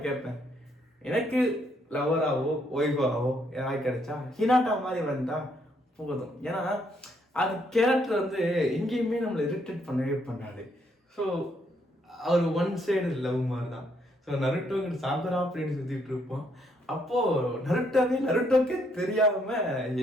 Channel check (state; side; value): normal; both; correlation 0.72